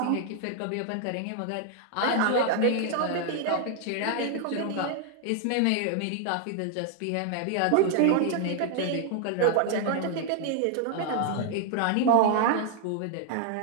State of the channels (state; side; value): different; both; correlation 0.00